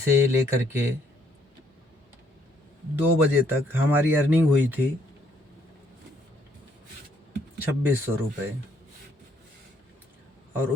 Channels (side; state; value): both; normal; correlation 0.69